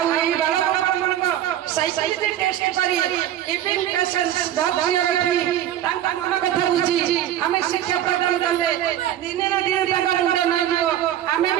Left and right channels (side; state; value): left; quieter; 11.7 dB